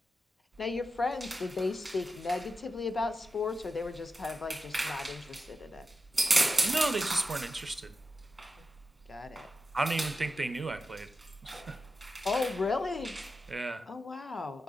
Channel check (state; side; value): normal; both; correlation 0.90